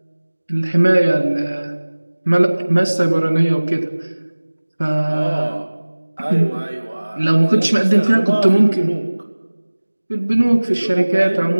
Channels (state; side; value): inverted; both; correlation -1.00